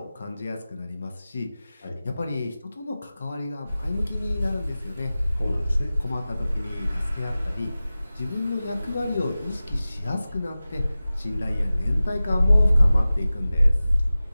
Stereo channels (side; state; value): both; inverted; correlation -0.96